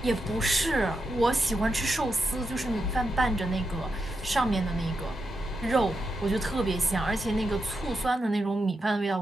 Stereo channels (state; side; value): normal; both; correlation 0.86